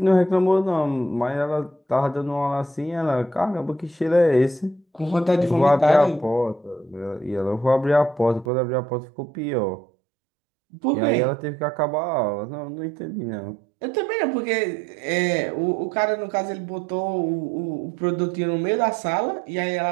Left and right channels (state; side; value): drops out; left; at 8.5 s